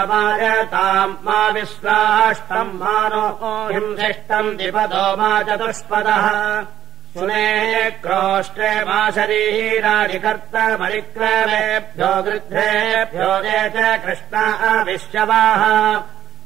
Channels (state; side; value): quieter; left; 11.4 dB